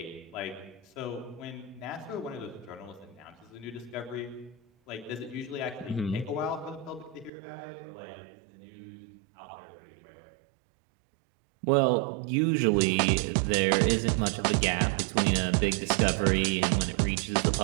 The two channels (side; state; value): left; drops out; at 7.3 s